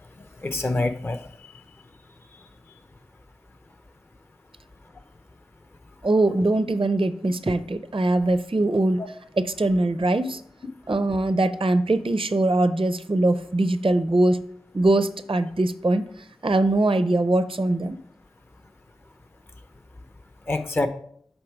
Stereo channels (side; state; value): both; normal; correlation 0.89